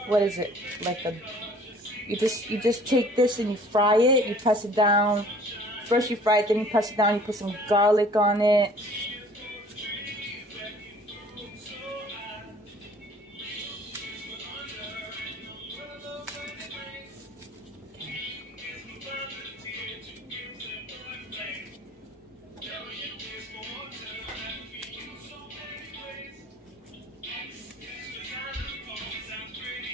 What is it? You just take this and you fry it. You press it down. First you fry it, then you press it down. You put some garlic on it.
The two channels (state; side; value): normal; both; correlation 0.52